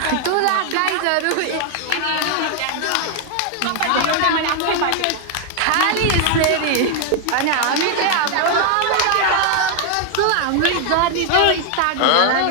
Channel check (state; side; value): different; both; correlation 0.00